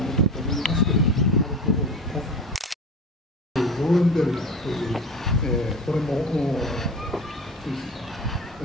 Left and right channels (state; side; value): normal; both; correlation 0.32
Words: のだと思いますけれども、アルコールのローレンベルガーという、これもスイスの